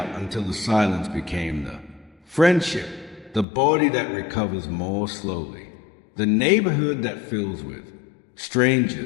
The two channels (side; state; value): right; drops out; at 3.5 s